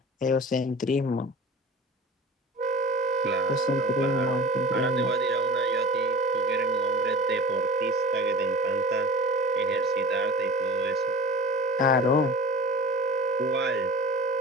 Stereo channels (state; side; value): normal; both; correlation 0.37